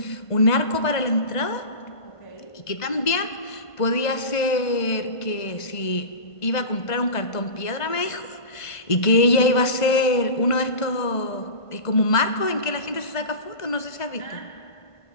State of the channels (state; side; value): late; right; 1.5 ms